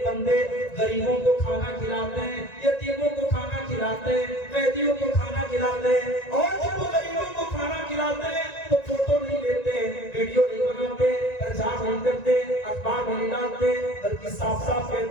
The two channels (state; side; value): late; right; 1.9 ms